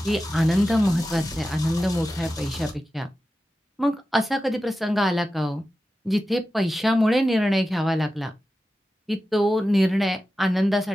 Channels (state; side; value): normal; both; correlation 0.93